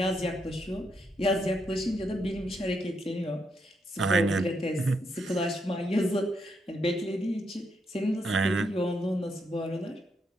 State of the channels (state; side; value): normal; both; correlation 0.79